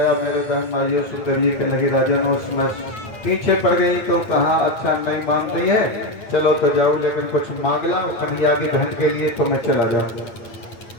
मेरे बहन भाइयों सुंदर जी के लगे राजा उसमें पीछे पड़ गई तो कहा अच्छा नहीं मान रही है, चलो तो जाओ, लेकिन कुछ मांग ला कन्हैया की बहन के लिए तो मैं चला जाऊंगा।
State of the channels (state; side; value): late; right; 8.8 ms